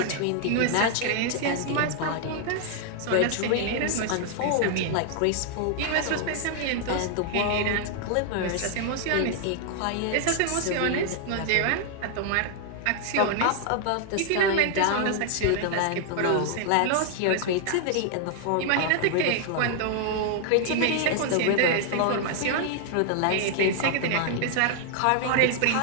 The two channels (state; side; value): different; both; correlation 0.00